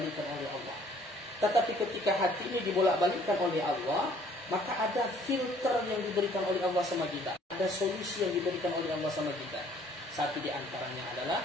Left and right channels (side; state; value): both; normal; correlation 0.58